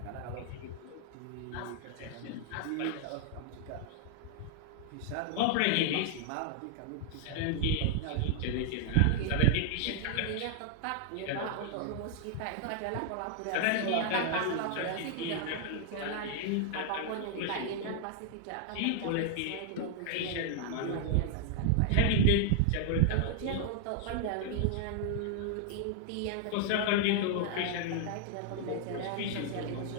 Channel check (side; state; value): both; different; correlation 0.00